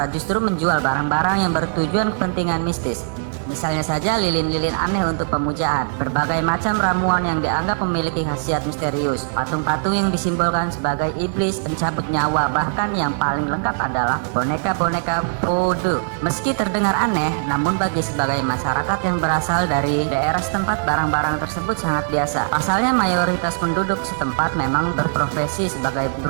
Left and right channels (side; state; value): left; silent; 64 dB below the other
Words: justru menjual barang-barang yang bertujuan kepentingan mistis. Misalnya saja lilin-lilin aneh untuk pemujaan, berbagai macam ramuan yang dianggap memiliki khasiat misterius, patung-patung yang disimbolkan sebagai iblis pencabut nyawa, bahkan yang paling lengkap adalah boneka-boneka voodoo. Meski terdengar aneh, namun bagi sebagai masyarakat yang berasal dari daerah setempat, barang-barang tersebut sangat biasa. Pasalnya mayoritas penduduk setempat memang berprofesi sebagai